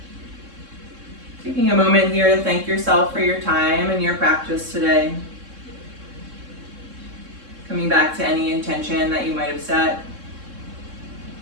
Taking a moment here to thank yourself for your time and your practice today. Coming back to any intention that you might have set.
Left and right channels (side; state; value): left; late; 3.7 ms